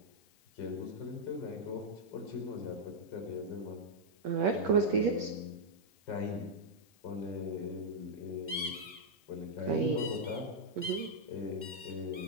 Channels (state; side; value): noise; left; hiss, 29 dB below the sound